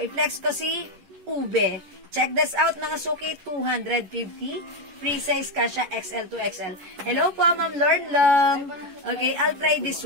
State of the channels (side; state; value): left; late; 11 ms